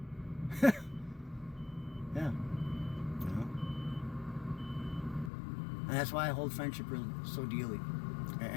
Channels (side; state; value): right; drops out; at 5.3 s